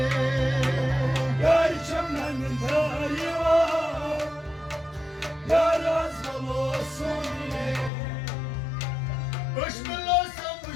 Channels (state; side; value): drops out; right; at 7.9 s